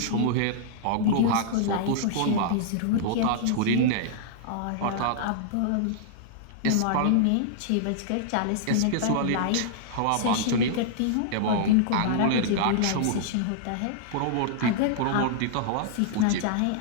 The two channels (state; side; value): different; both; correlation -0.01